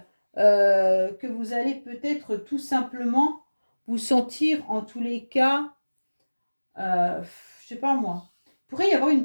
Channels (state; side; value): inverted; both; correlation -1.00